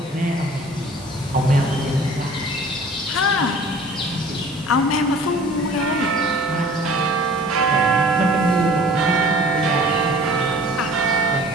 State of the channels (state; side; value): normal; both; correlation 0.48